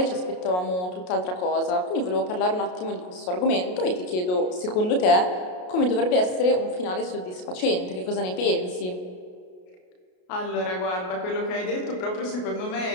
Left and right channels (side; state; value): right; late; 33 ms